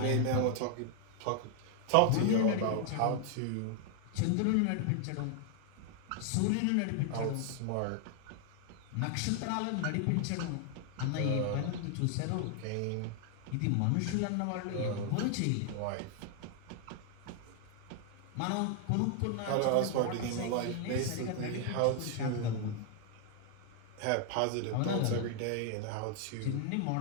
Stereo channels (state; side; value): different; both; correlation 0.00